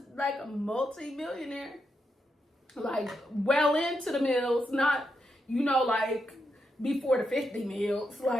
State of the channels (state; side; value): normal; both; correlation 0.83